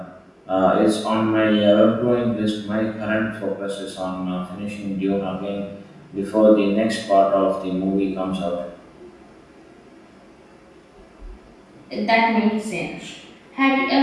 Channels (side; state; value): both; identical; correlation 1.00